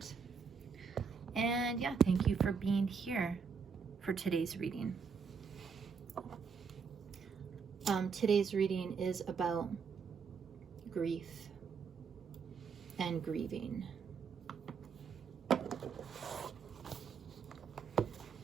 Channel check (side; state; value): left; quieter; 5.8 dB